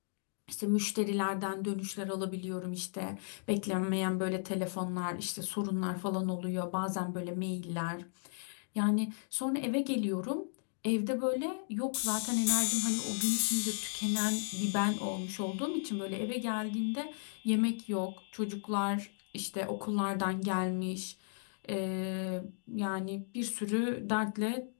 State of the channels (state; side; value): silent; right; digital silence